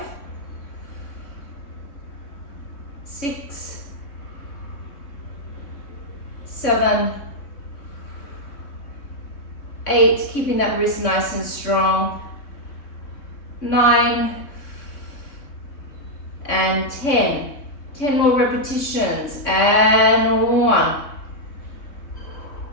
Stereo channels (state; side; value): late; right; 3.6 ms